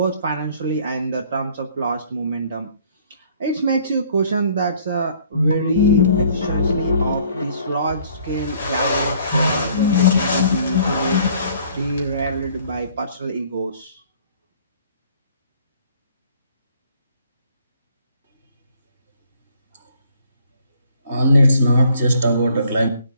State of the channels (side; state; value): both; inverted; correlation -0.59